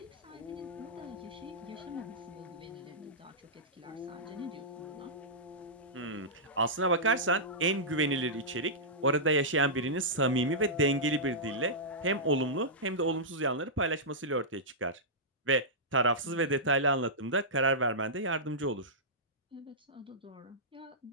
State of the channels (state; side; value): normal; both; correlation -0.13